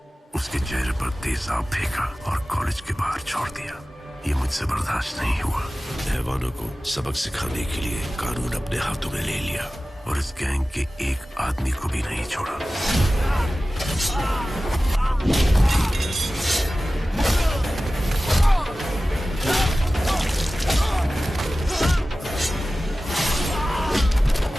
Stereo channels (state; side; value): normal; both; correlation 0.96